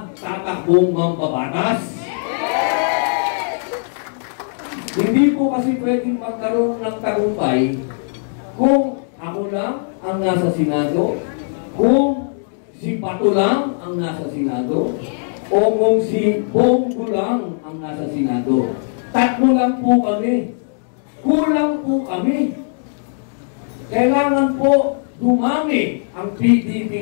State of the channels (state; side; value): silent; right; digital silence